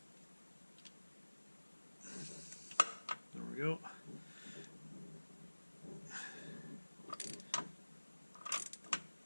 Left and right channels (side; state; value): both; inverted; correlation -1.00